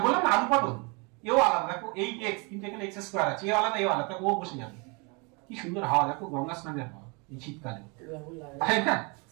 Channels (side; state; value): left; quieter; 31.2 dB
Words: বললাম না আলু পটল, এও আলাদা, দেখো 8x কিন্তু এখানে x স্কয়ার আছে, এও আলাদা এও আলাদা, ও বসে যাবে। কি সুন্দর হাওয়া, দেখো গঙ্গা স্নানের হাওয়া এই শীতকালে, তাই না?